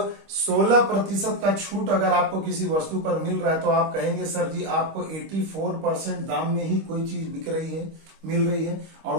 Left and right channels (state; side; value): late; left; 25 ms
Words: 16% का छूट अगर आपको किसी वस्तु पर मिल रहा है, तो आप कहेंगे सर जी आपको 84% दाम में ही कोई चीज बिक रही है, मिल रही है, और